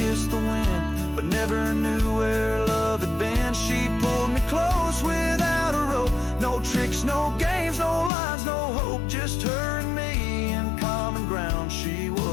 the wind, but never knew where love had been. She pulled me close without a rope, no tricks, no games, no lines, no hope, just her and me in common ground. She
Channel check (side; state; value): right; drops out; at 8.1 s